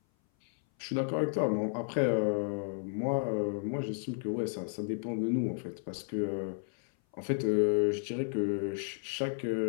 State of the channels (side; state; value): right; silent; 56 dB below the other